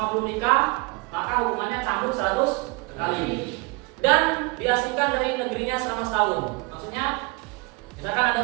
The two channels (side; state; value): left; quieter; 27.2 dB